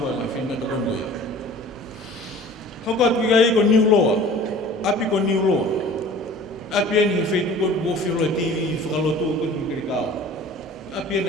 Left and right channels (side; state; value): both; normal; correlation 0.45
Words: la finna to kondo ya. Hoko atu ai ko new law. Api ko new law. Api ni feito ko mo filo TV falo to ko ki ka. Api